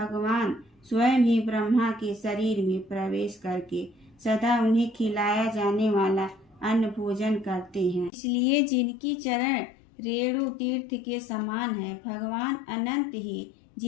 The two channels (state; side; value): drops out; right; at 8.1 s